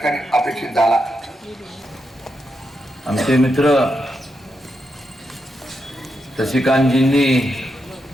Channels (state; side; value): normal; both; correlation 0.84